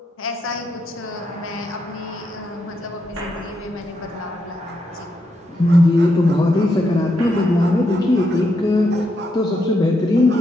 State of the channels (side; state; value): both; normal; correlation 0.81